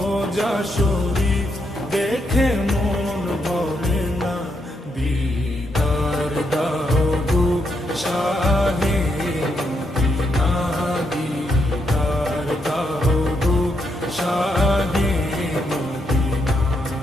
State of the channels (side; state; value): both; normal; correlation 0.79